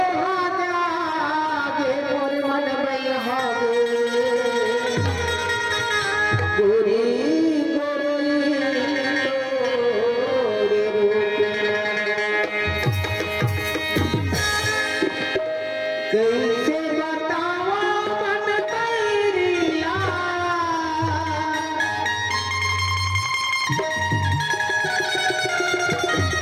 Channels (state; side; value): identical; both; correlation 1.00